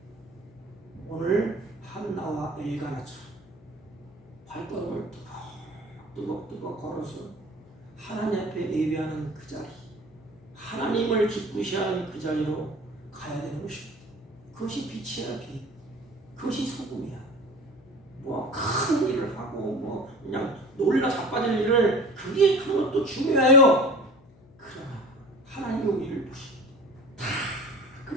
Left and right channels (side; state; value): left; noise; hum, 26 dB below the sound